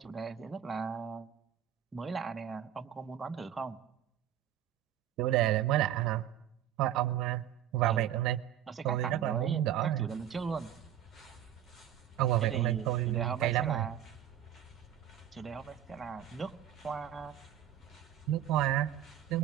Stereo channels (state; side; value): quieter; left; 10.8 dB